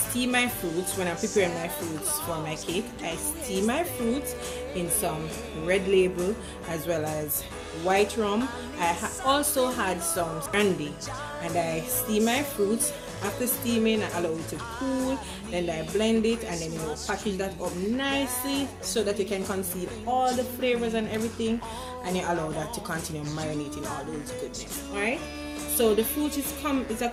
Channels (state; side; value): identical; both; correlation 1.00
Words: my fruits. When I'm preparing my fruits for my cake, I steam my fruits in some red label as well as white rum. I also had some brandy, and I steam my fruits. After steaming, I allow it to cool, then I blend it, and then package that up nicely so that you can conceal all the flavors and everything, and you allow that to continue marinating all those goodness. Alright, so the fruit is a